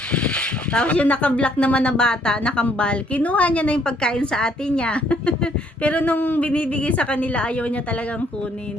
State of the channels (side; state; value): both; normal; correlation 0.67